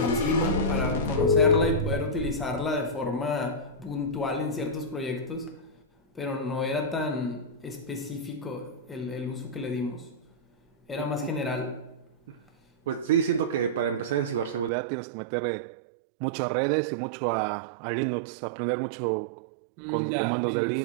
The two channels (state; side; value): drops out; left; at 14.7 s